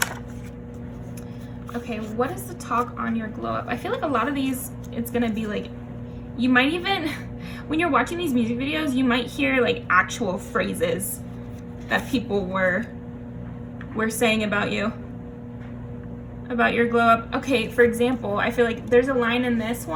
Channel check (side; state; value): both; identical; correlation 1.00